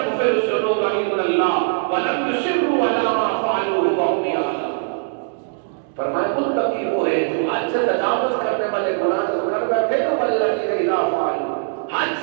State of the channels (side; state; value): left; silent; digital silence